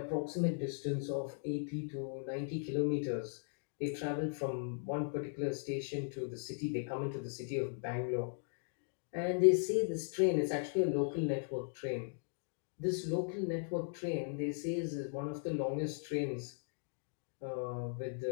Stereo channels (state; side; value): silent; right; digital silence